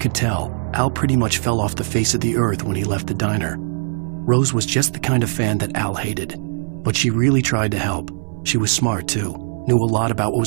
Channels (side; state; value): left; silent; digital silence